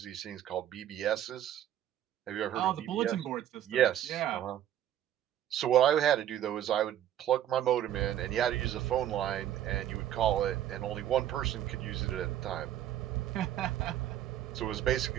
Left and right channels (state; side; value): quieter; left; 11.4 dB